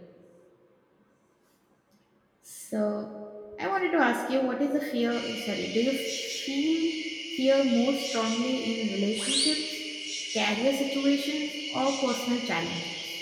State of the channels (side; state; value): both; identical; correlation 1.00